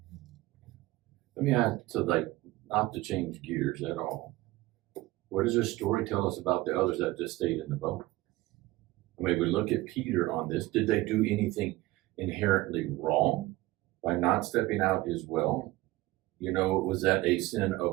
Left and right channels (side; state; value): left; quieter; 18.8 dB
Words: Let me ask, so like, not to change gears at all. What does this story tell us about the others that just stayed in the boat? I mean, we look at Peter on this. Did they do anything inherently wrong by not stepping out as well? Was that a sin